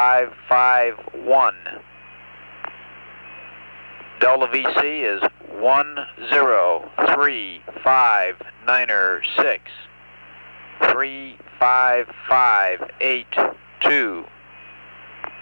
Delta VC is 1035996 35582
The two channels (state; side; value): inverted; both; correlation -1.00